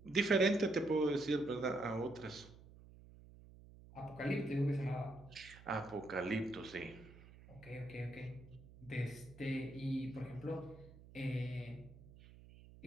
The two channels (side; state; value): right; noise; hum, 20 dB below the sound